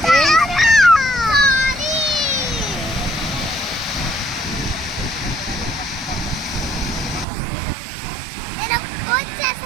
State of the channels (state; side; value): drops out; left; at 7.2 s